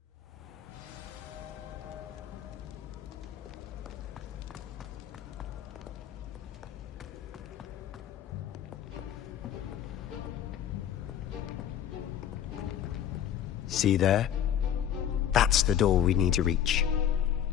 See there? That's the door we need to reach.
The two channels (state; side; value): quieter; right; 10.0 dB